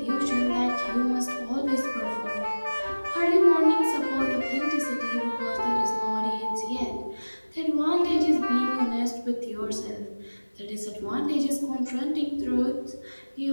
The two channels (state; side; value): inverted; both; correlation -1.00